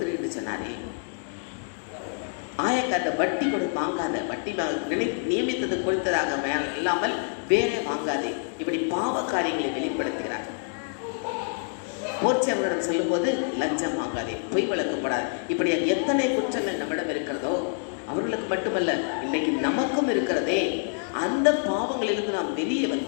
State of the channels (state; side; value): silent; right; 59 dB below the other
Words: என்று சொன்னாரே. ஆயக்காத வட்டி வாங்காத, வட்டி நியமித்தது கொடுத்ததாக இல்லாமல் வேற வாங்காதே. இப்படி பாவ காரியங்களை வெளிப்படுத்துகிறார். போர்ச்சவர்களிடம் சொல்லும் போது லஞ்சம் வாங்காதே, பொய் வழக்கப்படாது. இப்படி எத்தனை குற்றங்கள் நம்மிடம் இருக்கிறதோ அவர்களுக்கு மட்டுமல்ல, இன்னைக்கு நமக்கும் இருக்கிறதே. அந்த பாவங்களிலிருந்து நாம் வெளியே